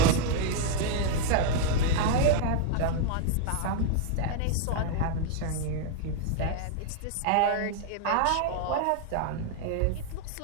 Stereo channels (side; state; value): both; different; correlation 0.00